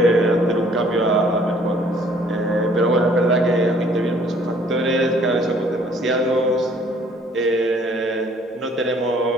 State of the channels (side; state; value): both; normal; correlation 0.59